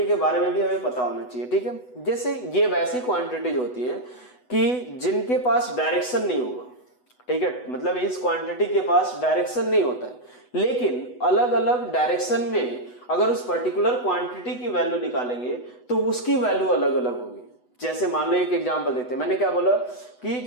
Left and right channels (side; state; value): right; late; 8.1 ms